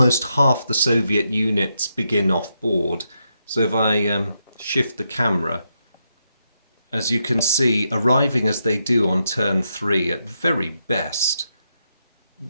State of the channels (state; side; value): inverted; both; correlation -0.82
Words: half the Soviet units begin off board. So if I shift the camera, as you can see, arriving as they do on turn 3, at very best,